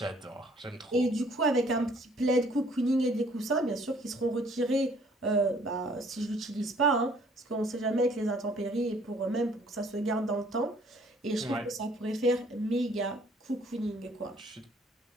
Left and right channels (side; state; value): both; normal; correlation 0.59